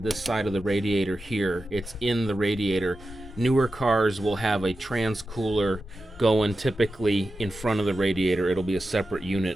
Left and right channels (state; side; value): normal; both; correlation 0.92